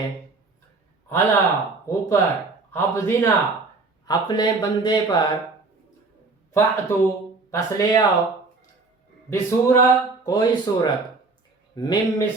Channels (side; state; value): left; quieter; 3.8 dB